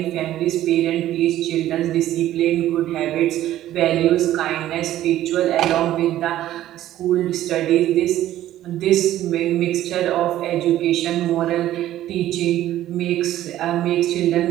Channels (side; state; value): left; quieter; 13.4 dB